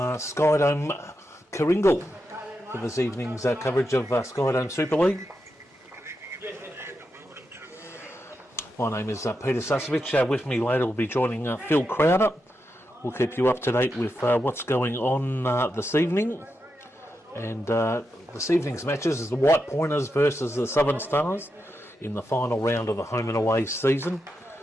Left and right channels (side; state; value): both; normal; correlation 0.86